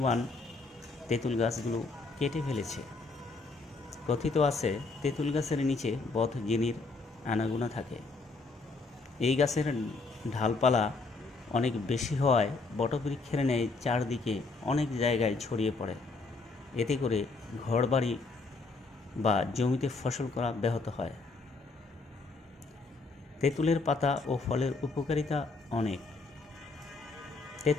তেঁতুল গাছগুলো কেটে ফেলেছে। কথিত আছে তেঁতুল গাছের নিচে বদ জিনির আনাগোনা থাকে। এই গাছের ঢালপালা অনেক বেশি হওয়ায় বটবৃক্ষের ন্যায় চারদিকে অনেক জায়গায় ছড়িয়ে পড়ে। এতে করে ঘরবাড়ি বা জমিতে ফসল করা ব্যাহত হয়। তেঁতুলের পাতা ও ফলের উপকারিতা অনেক।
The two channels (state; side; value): quieter; right; 3.8 dB